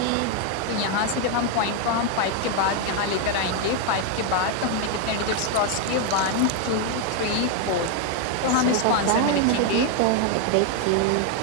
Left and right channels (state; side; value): different; both; correlation 0.01